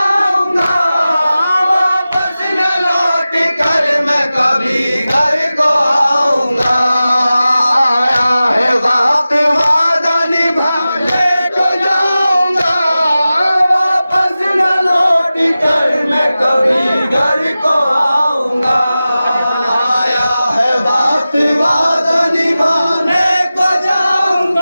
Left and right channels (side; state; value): both; inverted; correlation -0.95